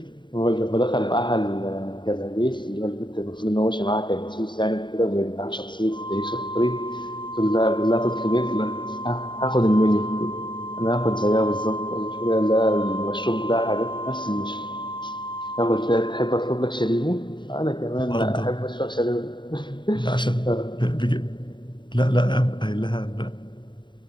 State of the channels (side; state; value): right; late; 0.23 ms